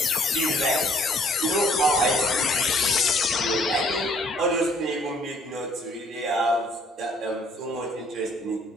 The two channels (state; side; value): normal; both; correlation 0.61